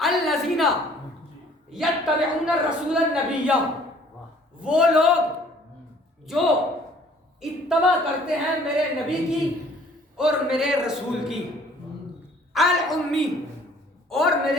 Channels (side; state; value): both; normal; correlation 0.56